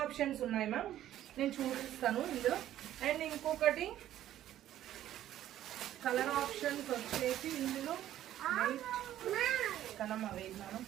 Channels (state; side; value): quieter; left; 12.4 dB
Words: ఆప్షన్స్ ఉన్నాయి మ్యామ్, నేను చూపిస్తాను ఇందులో. అండ్ ఇంకొకటి కలర్ ఆప్షన్స్ వచ్చేసి ఇందులో కనమ్మ వేసినాను.